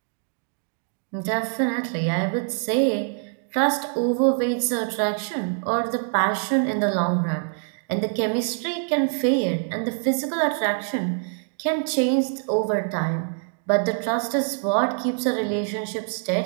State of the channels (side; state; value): left; silent; 57 dB below the other